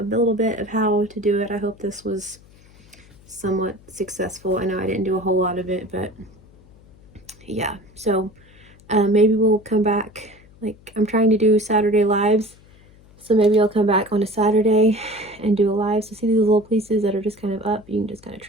little bit of how to do it. I hope this was somewhat successful. I know I didn't do a whole lot of it, but yeah. So maybe we'll come back. Like, I'm trying to do Saturday lives, so maybe I'll come back on a Saturday and do a live. So see these little pieces that are just kind of up, you can just kind of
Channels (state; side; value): noise; left; hum, 26 dB below the sound